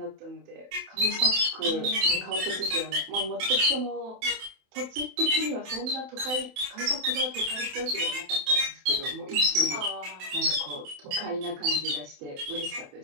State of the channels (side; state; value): left; late; 27 ms